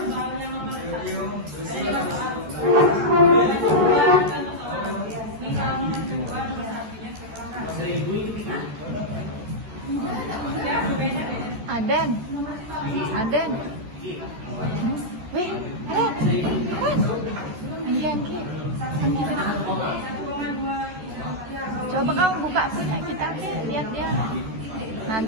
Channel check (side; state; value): left; late; 14 ms